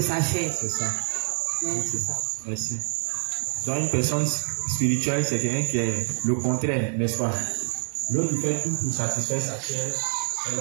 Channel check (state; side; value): silent; left; 61 dB below the other